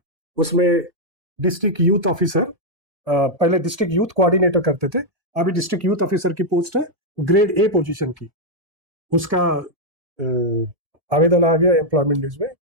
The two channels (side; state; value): left; late; 1.7 ms